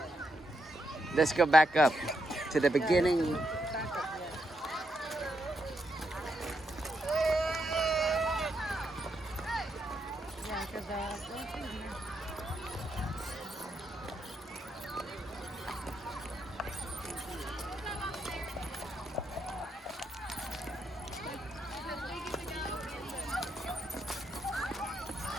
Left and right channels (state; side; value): normal; both; correlation 0.81